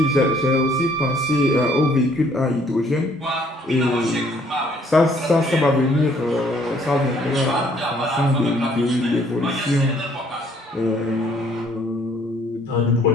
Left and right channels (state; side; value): normal; both; correlation 0.63